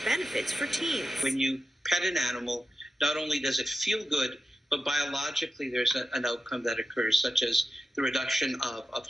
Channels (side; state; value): both; normal; correlation 0.91